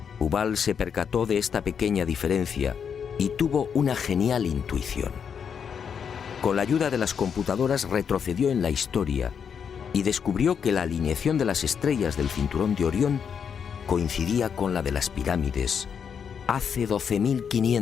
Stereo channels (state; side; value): quieter; right; 7.2 dB